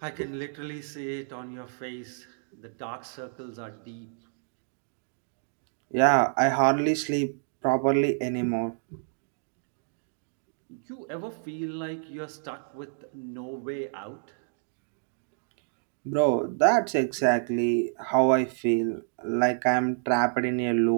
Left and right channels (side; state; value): left; silent; digital silence